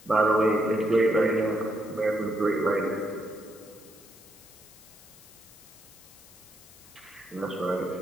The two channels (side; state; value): left; noise; hiss, 22 dB below the sound